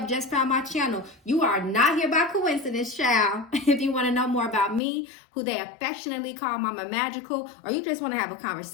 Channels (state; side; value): drops out; right; at 4.8 s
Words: just found my channel. You are not here by coincidence, child. If you want to know more about me, who they affectionately call Mama Magical, or you just want to have a